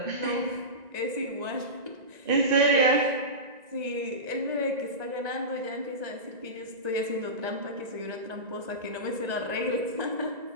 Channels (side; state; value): left; late; 1.9 ms